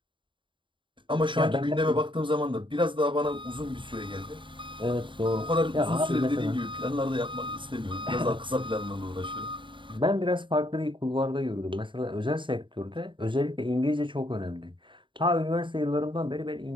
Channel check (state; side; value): late; left; 0.24 ms